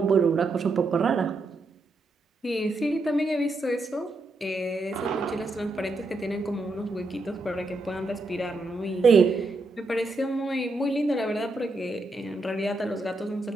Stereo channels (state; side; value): quieter; left; 3.0 dB